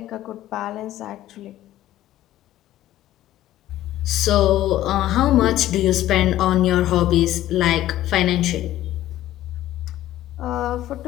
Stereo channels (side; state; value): right; quieter; 14.0 dB